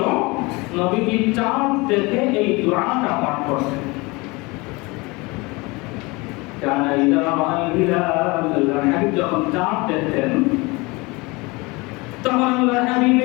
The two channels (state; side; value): quieter; right; 25.0 dB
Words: নবীজি চাঁদ দেখে এই দোয়াটা পাঠ করতেন। কানা ইযা রাআল হিলাল, আল্লাহর হাবিব যখন চাঁদ দেখতেন তখন আল্লাহর হাবিব